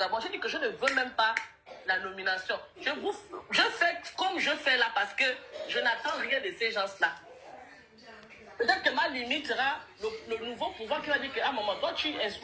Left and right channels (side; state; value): both; identical; correlation 1.00